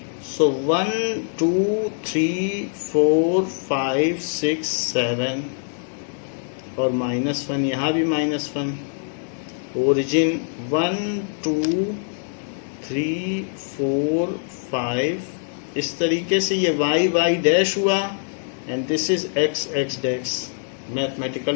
सो 1 2 3 4 5 6 7 और -1, यहाँ भी -1। ओरिजिन 1 2 3 4 5, इस तरीके से ये y डैश हुआ and this is x dash. Mathematical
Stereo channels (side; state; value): right; silent; digital silence